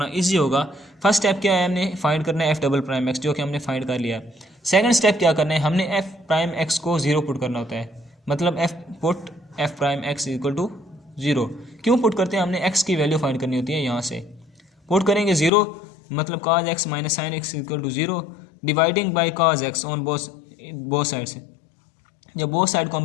इजी होगा। फर्स्ट स्टेप क्या है, हमने फाइंड करना है एफ डबल प्राइम एक्स, जो कि हमने फाइंड कर लिया। सेकंड स्टेप क्या करना है, हमने एफ प्राइम एक्स को 0 पुट करना होता है, मतलब f prime x equal to 0। क्यों पुट करते हैं, हमने एक्स की वैल्यू फाइंड करनी होती है। यहाँ से पुट करेंगे 0, मतलब cos x minus sine x equal to 0, dividing by cos x on both side से। जब बोथ साइड को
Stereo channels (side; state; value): right; drops out; at 15.5 s